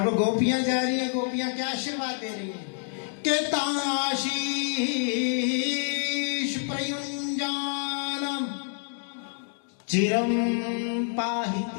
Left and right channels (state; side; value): silent; right; 60 dB below the other